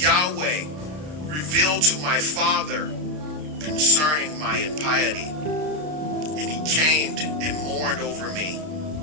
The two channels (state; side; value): late; left; 33 ms